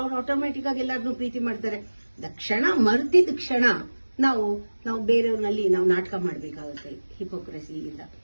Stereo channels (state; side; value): inverted; both; correlation -1.00